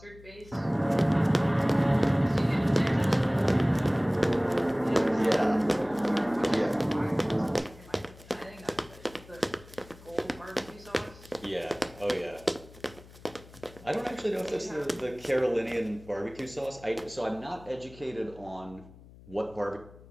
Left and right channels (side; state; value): left; noise; hum, 21 dB below the sound